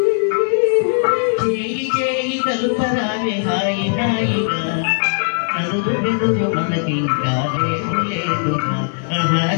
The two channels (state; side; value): silent; right; 63 dB below the other